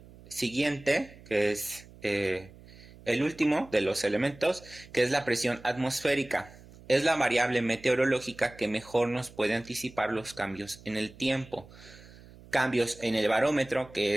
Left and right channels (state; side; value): noise; right; hum, 21 dB below the sound